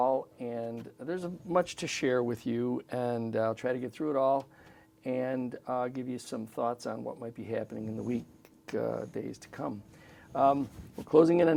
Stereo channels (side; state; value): both; identical; correlation 1.00